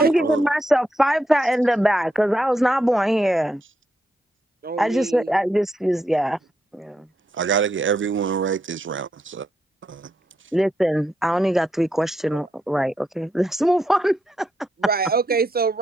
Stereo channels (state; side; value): normal; both; correlation 0.81